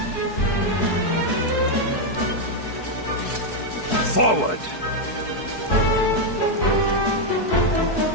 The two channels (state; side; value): late; right; 4.6 ms